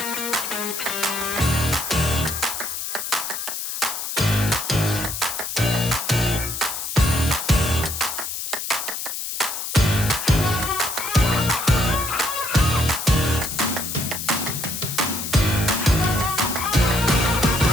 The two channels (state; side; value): noise; left; hiss, 5 dB below the sound